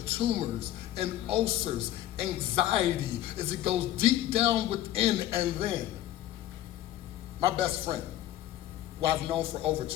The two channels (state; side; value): quieter; right; 13.3 dB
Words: tumors and ulcers, anxiety as it goes deep down within. And then my best friend, who I've known for over